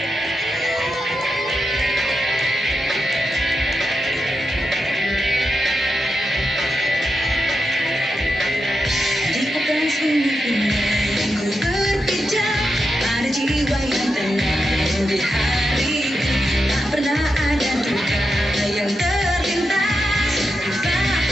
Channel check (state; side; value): normal; both; correlation 0.87